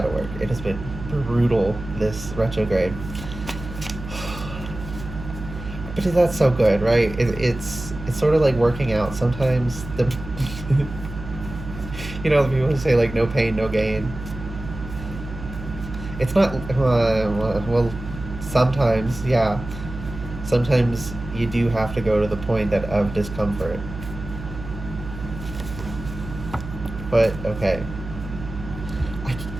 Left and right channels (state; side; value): noise; right; hum, 11 dB below the sound